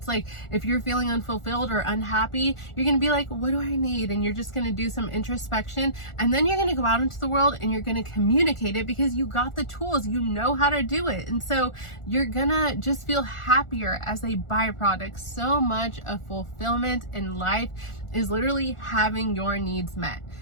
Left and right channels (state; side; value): late; right; 1.4 ms